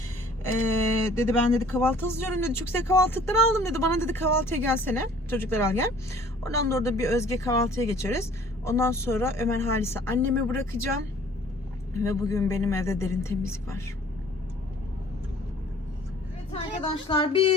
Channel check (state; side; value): normal; both; correlation 0.53